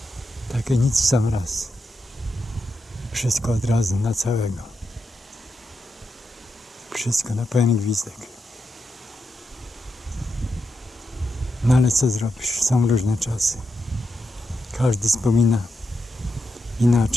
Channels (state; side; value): normal; both; correlation 0.85